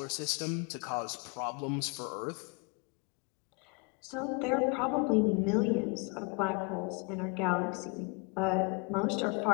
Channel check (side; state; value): right; quieter; 31.1 dB